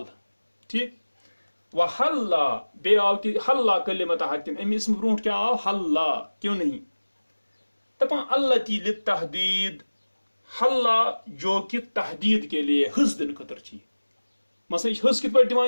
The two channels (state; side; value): inverted; both; correlation -1.00